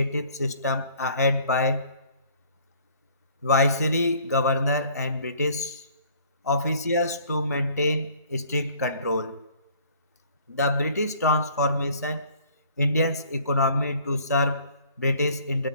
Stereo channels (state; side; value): inverted; both; correlation -0.56